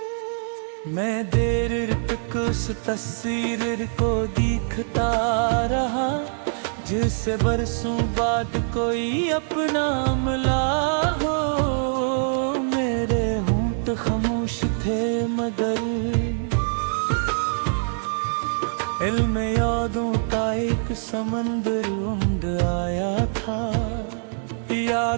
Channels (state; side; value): silent; left; digital silence